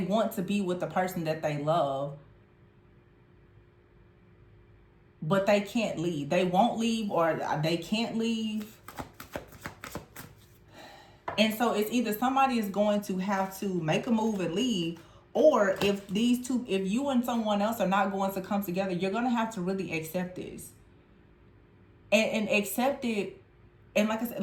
to be with the person that they love, but they can't leave. They won't leave or they can't leave. And so it's either somebody is going to have to make a move and leave, or if you and someone else are not going to come together, you're going to have to really accept this. And accept it. And like I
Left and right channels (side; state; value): both; identical; correlation 1.00